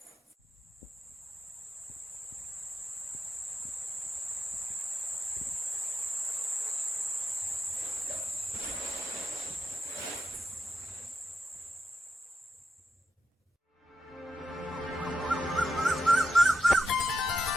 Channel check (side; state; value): both; normal; correlation 0.87